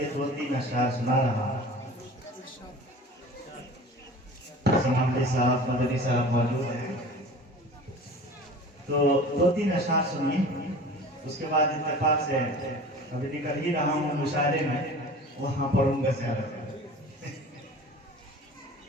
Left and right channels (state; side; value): normal; both; correlation 0.40